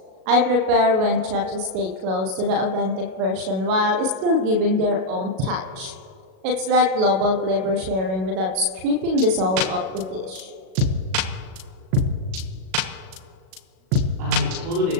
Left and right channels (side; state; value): left; late; 37 ms